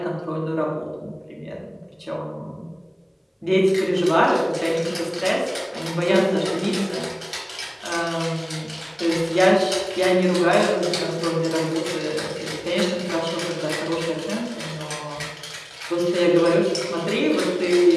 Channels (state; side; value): identical; both; correlation 1.00